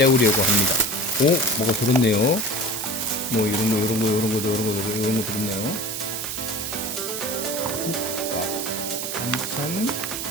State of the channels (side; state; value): right; noise; hiss, 4 dB below the sound